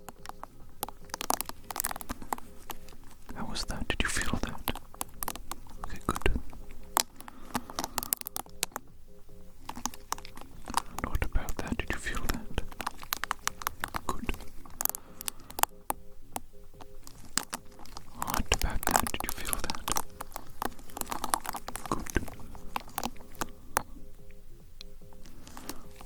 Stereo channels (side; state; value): both; identical; correlation 1.00